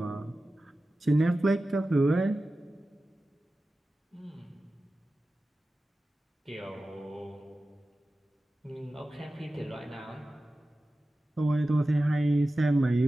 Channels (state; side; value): normal; both; correlation 0.95